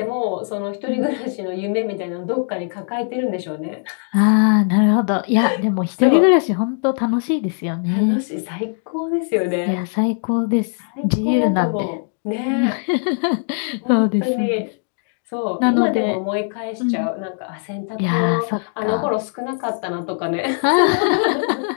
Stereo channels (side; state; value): right; silent; 64 dB below the other